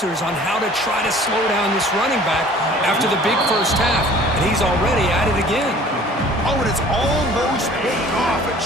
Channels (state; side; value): normal; both; correlation 0.50